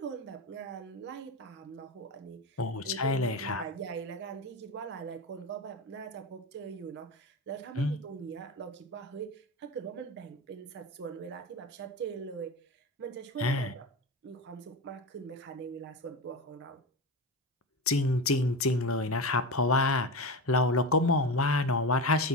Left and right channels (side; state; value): both; normal; correlation 0.22